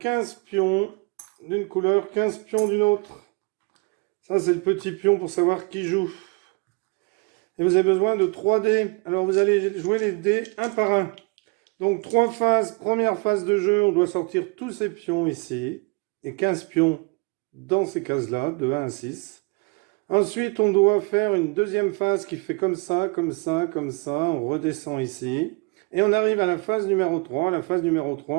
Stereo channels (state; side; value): quieter; left; 30.2 dB